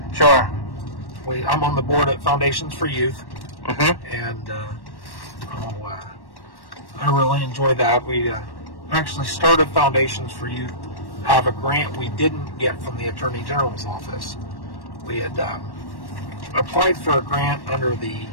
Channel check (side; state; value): right; late; 1.1 ms